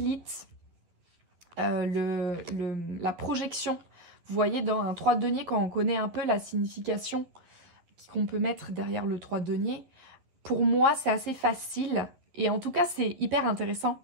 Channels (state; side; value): late; left; 11 ms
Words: la projection. Vous voyez, dans un 3 deniers, quand on connaît un peu la signification qu'on peut mettre derrière le 3 deniers, pour moi, c'est assez facile. Et en tout cas, c'est hyper intéressant